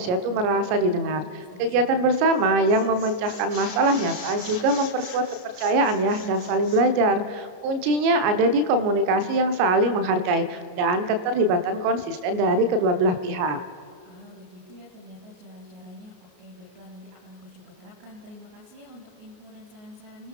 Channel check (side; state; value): left; late; 33 ms